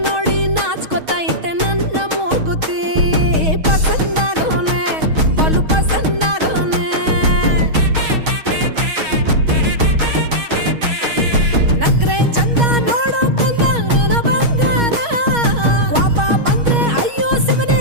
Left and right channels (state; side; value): late; left; 6.3 ms